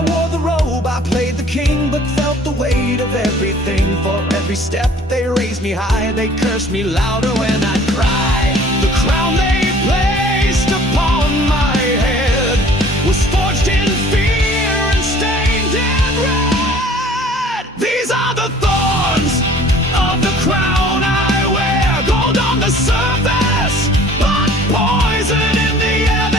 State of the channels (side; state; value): both; normal; correlation 0.51